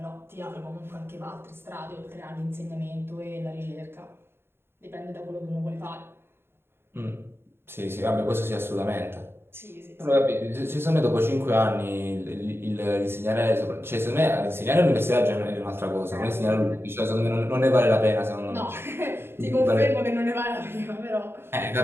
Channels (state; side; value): late; left; 0.11 ms